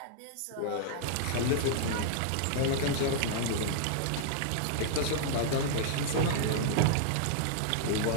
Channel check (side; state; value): both; different; correlation -0.01